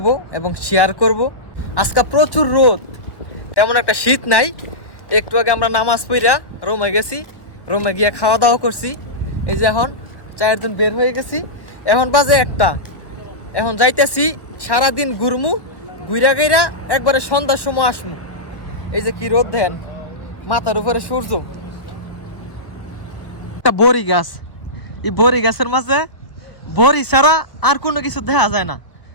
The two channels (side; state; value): right; late; 1.3 ms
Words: এবং শেয়ার করব। আজকে প্রচুর রোদ, তেমন একটা শীত নাই। একটু আগে আমরা নামাজ পড়া রুমে গেছি, রুমে গিয়ে খাওয়া দাওয়া করছি। এই যে এখন 4 জন বের হয়ে গেছি, এখন বাজে 1টা। এখন যাইতেছি সারাদিন ঘুরমু, ঘুরা গেরা একবারে সন্ধ্যার সময় আসমু। এই যে কি রোদ দেন, মাথার উপরে সূর্য। একটা বড়ি গাছ, এই বড়ি গাছের মাঝে বড়ি ছাড়া আর কোনো কিছু দেখা যায় না।